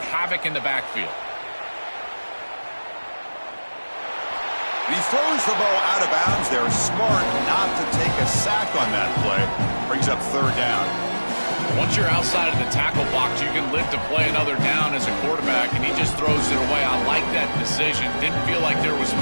havoc in the backfield. He throws the ball out of bounds. They're smart not to take a sack on that play. Brings up third down. Once you're outside of the tackle box, you can live to play another down as a quarterback, and he just throws it away. I like that decision. Didn't feel like there was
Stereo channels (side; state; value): both; inverted; correlation -1.00